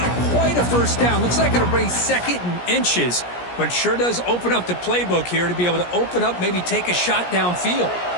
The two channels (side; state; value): right; late; 17 ms